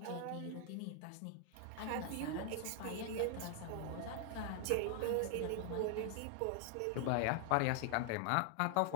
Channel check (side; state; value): both; different; correlation 0.00